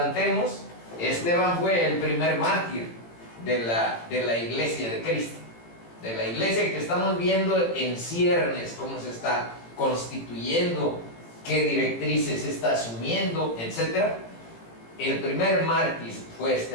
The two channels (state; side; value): late; right; 18 ms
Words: Esteban fue el primer mártir de la iglesia de Cristo, de la iglesia que estamos viendo en ciernes, cómo se está constituyendo, qué directrices está asumiendo, etc. El primer mártir fue